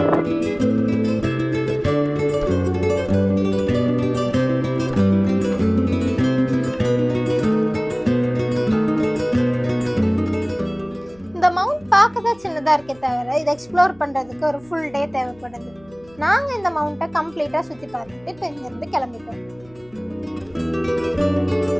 இந்த மவுண்ட் பார்க்க தான் சின்னதாக இருக்கே தவிர இதை எக்ஸ்ப்ளோர் பண்ணுறதுக்கு ஒரு ஃபுல் டே தேவைப்படுது. நாங்கள் இந்த மவுண்ட்டை கம்ப்ளீட்டாக சுற்றி பார்த்துட்டு இப்போ இங்கேருந்து கிளம்பிட்டோம்.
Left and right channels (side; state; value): left; noise; hum, 28 dB below the sound